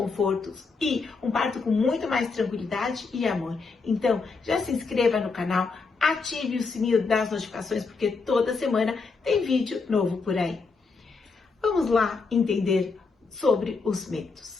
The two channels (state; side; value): quieter; right; 4.4 dB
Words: e um parto com muito mais tranquilidade e amor. Então, já se inscreva no canal, ative o sininho das notificações, porque toda semana tem vídeo novo por aí. Vamos lá entender sobre os